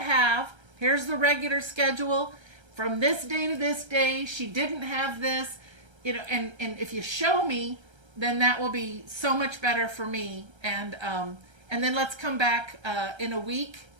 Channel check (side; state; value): left; late; 1.3 ms